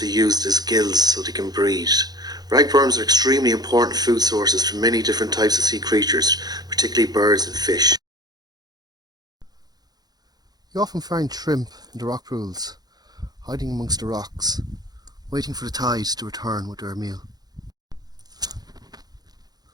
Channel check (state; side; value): late; left; 0.19 ms